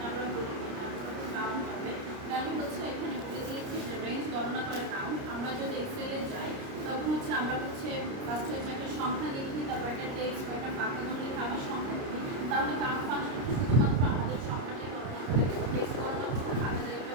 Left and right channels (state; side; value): late; left; 29 ms